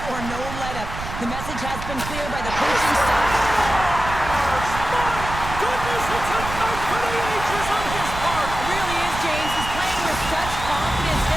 or no let-up. The message has been clear by the coaching staff. Goodness, it's a fight for the ages on his part! It really is, James. He's playing with such confidence.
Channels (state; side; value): noise; right; rumble, 8 dB below the sound